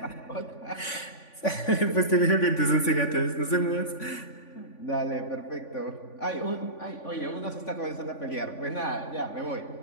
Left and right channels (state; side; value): late; right; 3.5 ms